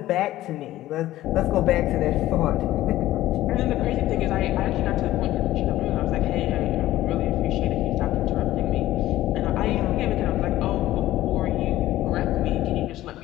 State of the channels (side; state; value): right; quieter; 15.0 dB